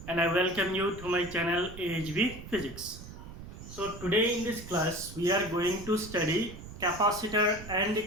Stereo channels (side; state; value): right; noise; rumble, 13 dB below the sound